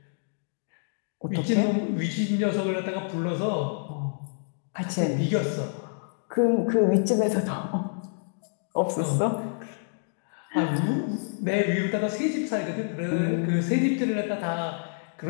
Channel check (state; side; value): silent; right; digital silence